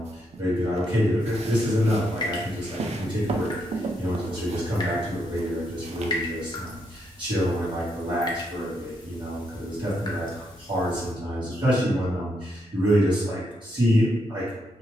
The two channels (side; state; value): both; normal; correlation 0.78